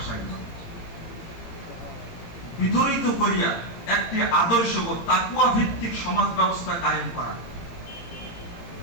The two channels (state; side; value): late; right; 17 ms